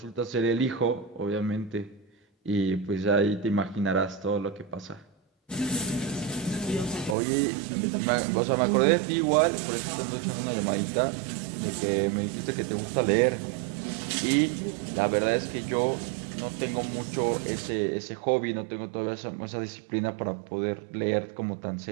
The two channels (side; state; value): left; drops out; at 7.2 s